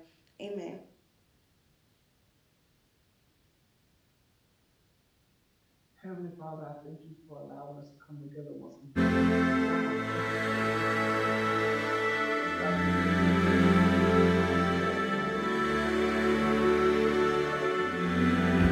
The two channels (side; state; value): both; identical; correlation 1.00